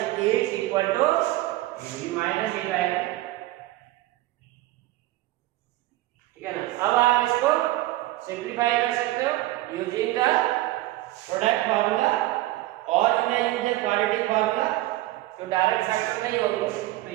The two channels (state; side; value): quieter; left; 17.0 dB